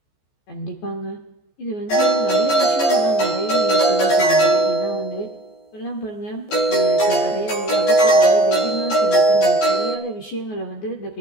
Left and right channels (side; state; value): right; late; 14 ms